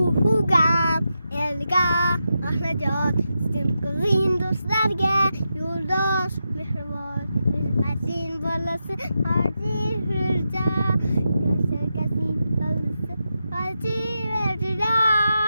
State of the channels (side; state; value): both; inverted; correlation -0.87